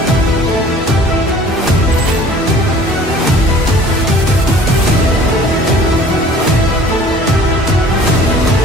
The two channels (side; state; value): both; normal; correlation 0.49